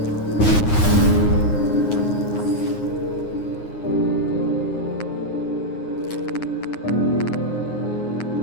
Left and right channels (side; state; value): right; late; 9.6 ms